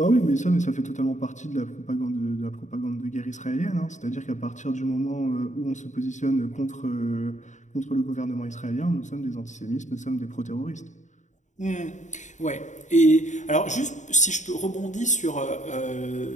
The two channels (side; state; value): right; late; 0.35 ms